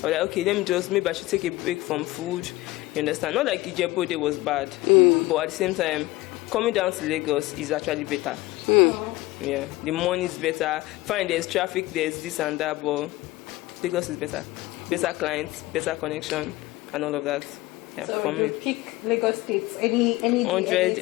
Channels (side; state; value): right; quieter; 19.1 dB